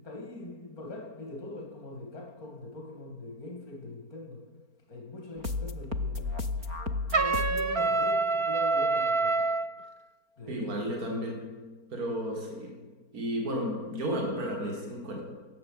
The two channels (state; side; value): late; left; 4.4 ms